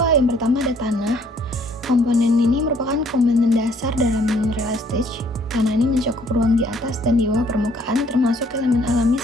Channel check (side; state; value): both; normal; correlation 0.62